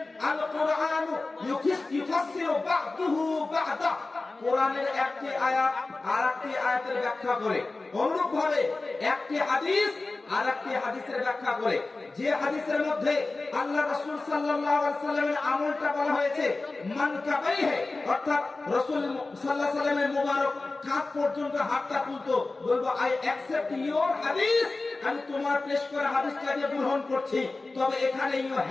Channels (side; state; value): right; quieter; 3.4 dB